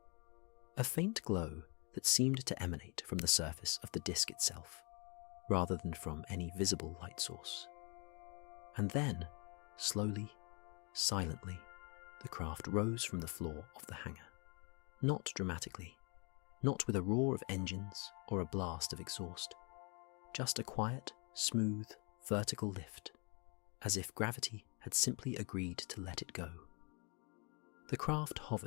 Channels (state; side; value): quieter; right; 32.7 dB